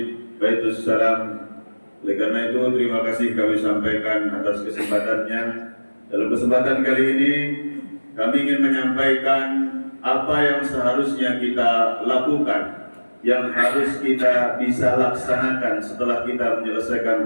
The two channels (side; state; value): both; inverted; correlation -1.00